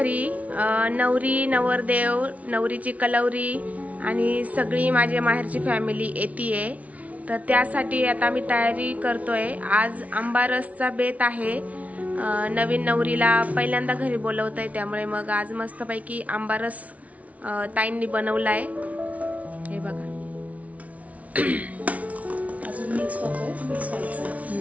नवरी नवरदेव नवरीची कलवरी आणि सगळी माझ्या माहेरची फॅमिली येतीये, तर त्यासाठी आता आम्ही तयारी करतोय। आज आंबारसचा बेत आहे। नवीन नवरीला पहिल्यांदा घरी बोलवतोय, त्यामुळे मग आज मस्तपैकी आंबारस ताईंनी बनवलाय। हे बघा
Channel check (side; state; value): left; late; 0.068 ms